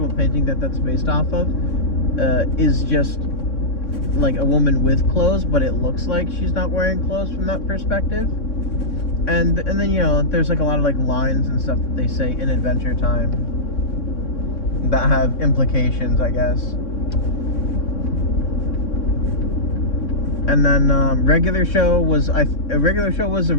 painting that's based off of is just like a woman with clothes, but it looks like she's not wearing clothes from that perspective. And then, you know, there's like a lot of like lines and stuff that they say in Adventure Time that have implications, I guess. And then regular show was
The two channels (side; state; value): right; late; 3.6 ms